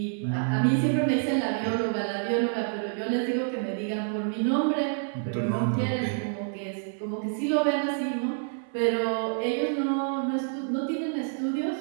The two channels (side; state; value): left; silent; 60 dB below the other